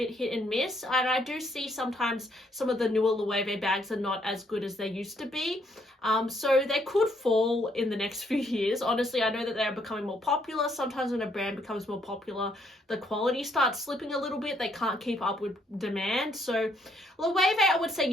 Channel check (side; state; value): both; normal; correlation 0.70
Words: hit and miss, and I do see sometimes some of the newer Loewe bags are not as good as they used to be. So they could fall in the next few years. Honestly, I know that they are becoming more popular. Sometimes when a brand becomes more popular, the quality starts slipping a little bit. They can't keep up with demand. So Loewe, I would say,